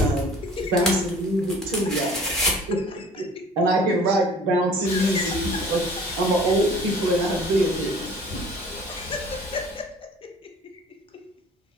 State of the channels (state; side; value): normal; both; correlation 0.49